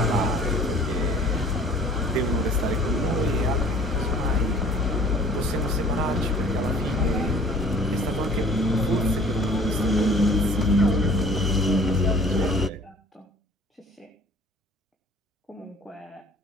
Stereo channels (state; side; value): normal; both; correlation 0.51